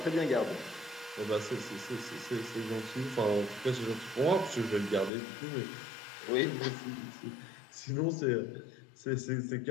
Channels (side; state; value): right; drops out; at 5.1 s